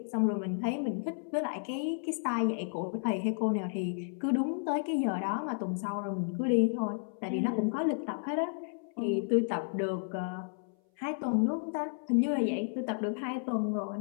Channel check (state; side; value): silent; right; 56 dB below the other